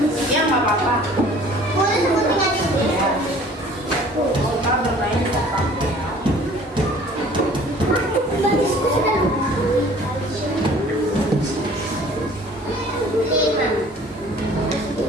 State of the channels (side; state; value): both; normal; correlation 0.51